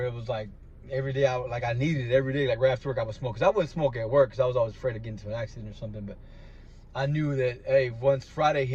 it was like every day I needed it every day. Like right after work, I would smoke. Because I wouldn't smoke at work because I was always afraid of getting into an accident or something. But I knew that, hey, once Friday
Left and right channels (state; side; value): identical; both; correlation 1.00